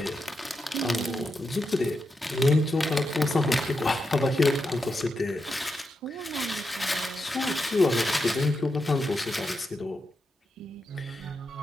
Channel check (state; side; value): normal; both; correlation 0.86